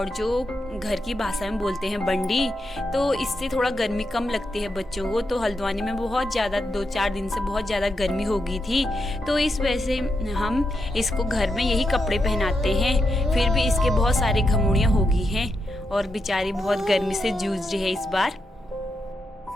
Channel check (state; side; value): normal; both; correlation 0.84